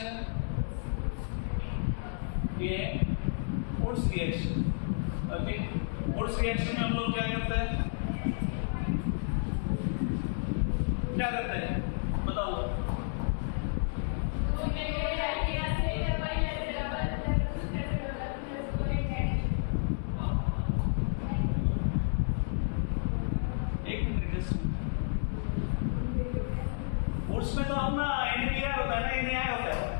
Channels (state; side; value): silent; right; digital silence